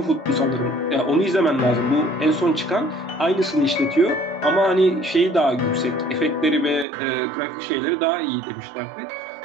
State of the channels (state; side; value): drops out; left; at 6.9 s